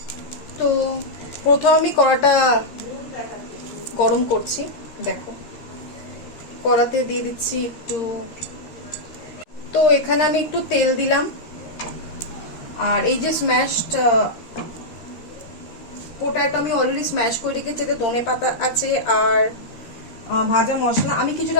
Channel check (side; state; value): right; late; 13 ms